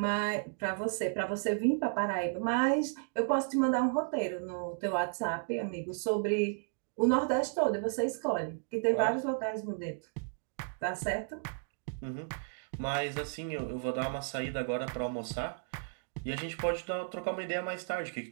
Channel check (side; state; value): left; silent; digital silence